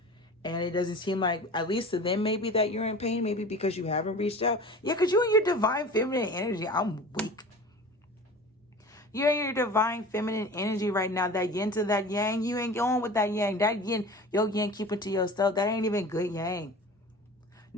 And it doesn't seem like, at least to them, maybe that you're in pain, maybe because you haven't reached out. Yeah, because you're in your divine feminine energy. I'm weak. You're in your divine feminine energy right now. That yin to that yang, you ain't going with that yang. That yin, your yang, keep it to yourself. That ain't even good yang.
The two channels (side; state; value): both; normal; correlation 0.38